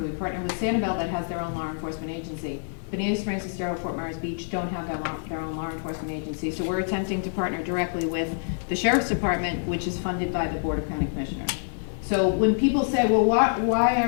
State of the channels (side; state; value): right; silent; digital silence